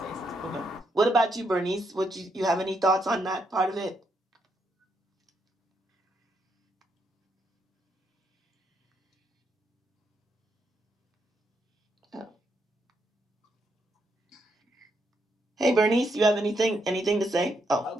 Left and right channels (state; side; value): normal; both; correlation 0.78